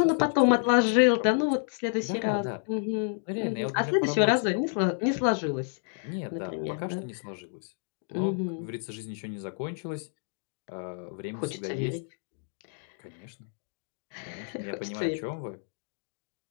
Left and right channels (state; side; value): silent; right; 58 dB below the other